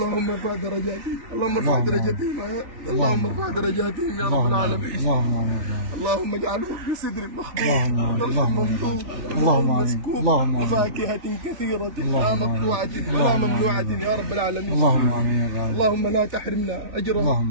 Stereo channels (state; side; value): late; left; 3.4 ms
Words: ارفع درجاتهم، اللهم ارفع درجاتهم، اللهم ارفع درجاتهم يا رب العالمين. اللهم امين. اللهم اجعلهم في صدر مخضوض اللهم ممدود، اللهم امين. مسكوب، اللهم امين. وفاكهة كثيرة لا مقطوعة ولا ممنوعة يا رب العالمين. اللهم امين يا رب. اللهم لا تحرمنا أجرا،